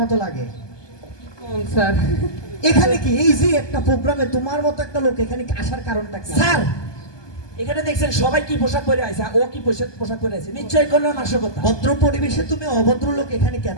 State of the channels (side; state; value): right; late; 1.2 ms